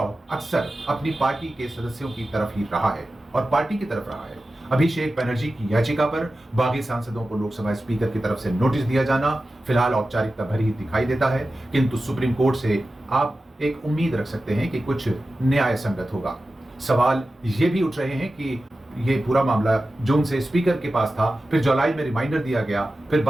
अक्सर अपनी पार्टी के सदस्यों की तरफ ही रहा है और पार्टी की तरफ रहा है। अभिषेक बनर्जी की याचिका पर बागी सांसदों को लोकसभा स्पीकर की तरफ से नोटिस दिया जाना फिलहाल औपचारिकता भरी ही दिखाई देता है, किंतु सुप्रीम कोर्ट से आप एक उम्मीद रख सकते हैं कि कुछ न्याय संगत होगा। सवाल ये भी उठ रहे हैं कि ये पूरा मामला जून से स्पीकर के पास था, फिर जुलाई में रिमाइंडर दिया गया, फिर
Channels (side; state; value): both; normal; correlation 0.94